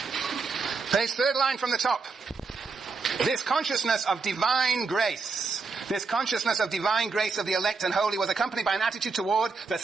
Page 3rd line from the top. This consciousness of divine grace of the elect and holy was accompanied by an attitude toward the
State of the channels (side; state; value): left; quieter; 4.4 dB